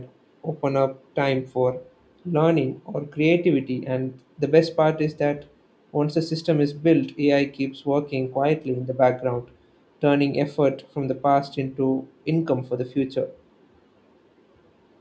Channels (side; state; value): both; identical; correlation 1.00